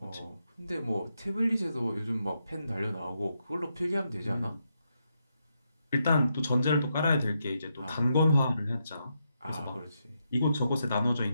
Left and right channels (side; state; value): both; inverted; correlation -0.82